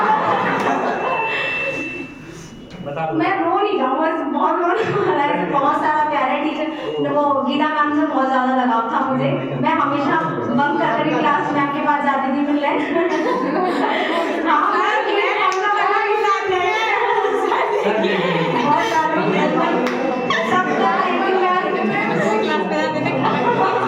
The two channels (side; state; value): both; identical; correlation 1.00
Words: मैं रो नहीं जाऊँ, बस बहुत रोने, बहुत सारा प्यारे टीचर, वो गीता मैम से बहुत ज़्यादा लगाव था मुझे। मैं हमेशा बंक करके क्लास मैम के पास जाती थी मिलने।